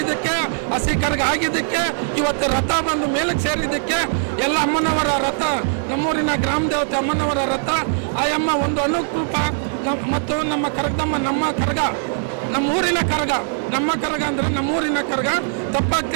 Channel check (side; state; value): left; silent; digital silence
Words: ಹಸಿ ಕರಗ ಆಗಿದ್ದಕ್ಕೆ, ಇವತ್ತು ರಥ ಬಂದು ಮೇಲಕ್ಕೆ ಸೇರಿದ್ದಕ್ಕೆ ಎಲ್ಲ ಅಮ್ಮನವರ ರಥ, ನಮ್ಮೂರಿನ ಗ್ರಾಮ ದೇವತೆ ಅಮ್ಮನವರ ರಥ, ಆ ಅಮ್ಮ ಒಂದು ಅನುಕೂಪ ಮತ್ತು ನಮ್ಮ ಕರಗದಮ್ಮ, ನಮ್ಮೂರಿನ ಕರಗ ಅಂದರೆ ನಮ್ಮೂರಿನ ಕರಗ, ತಪ್ಪಾಗಿ